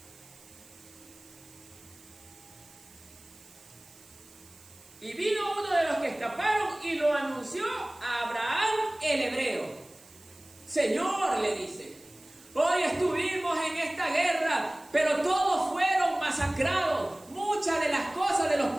Y vino uno de los que escaparon y lo anunció a Abraham el hebreo. Señor, le dice, hoy estuvimos en esta guerra, pero todos fueron masacrados. Muchas de las cosas de los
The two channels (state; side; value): noise; right; hiss, 24 dB below the sound